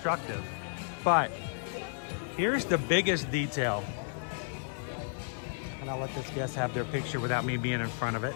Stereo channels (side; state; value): right; silent; digital silence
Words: But here's the biggest detail. And I'll let this guest have their picture without me being in front of it.